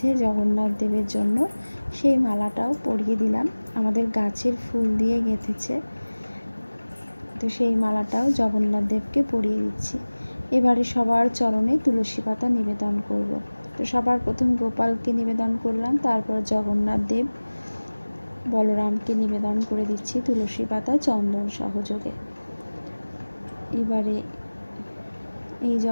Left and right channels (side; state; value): both; inverted; correlation -1.00